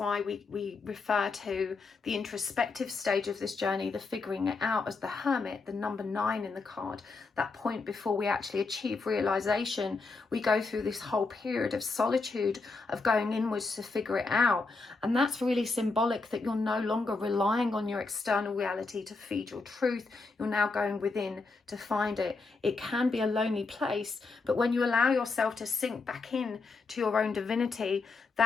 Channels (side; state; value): right; quieter; 4.0 dB